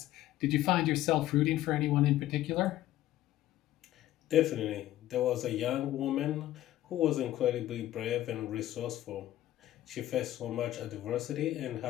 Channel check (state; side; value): quieter; right; 14.1 dB